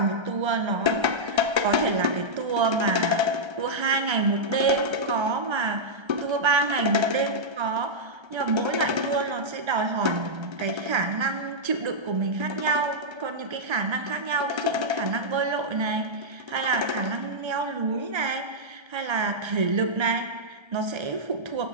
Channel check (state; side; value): late; left; 1.3 ms